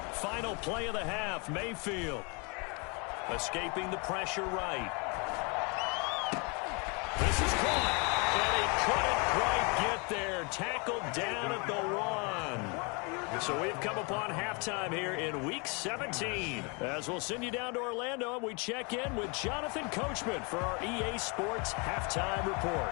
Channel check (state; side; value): quieter; right; 32.0 dB